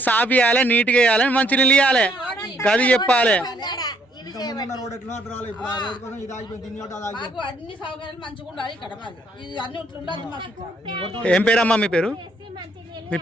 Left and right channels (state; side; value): normal; both; correlation 0.68